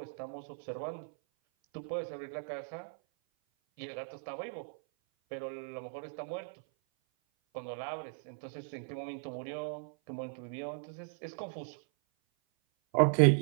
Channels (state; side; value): silent; left; 53 dB below the other